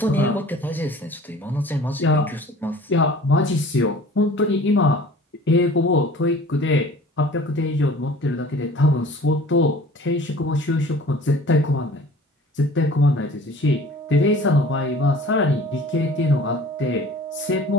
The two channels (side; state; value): both; normal; correlation 0.46